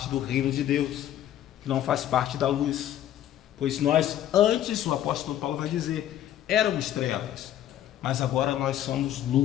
do reino de Deus, que não faz parte da luz. Pois nós, antes, o apóstolo Paulo vai dizer, éramos trevas, mas agora nós somos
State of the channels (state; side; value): quieter; right; 11.7 dB